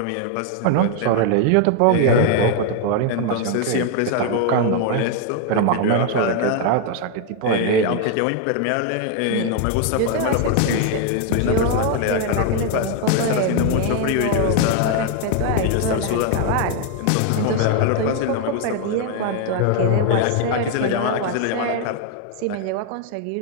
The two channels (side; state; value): both; different; correlation 0.00